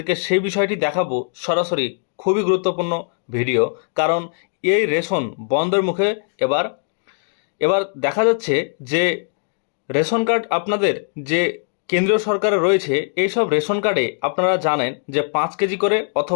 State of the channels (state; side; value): silent; right; 65 dB below the other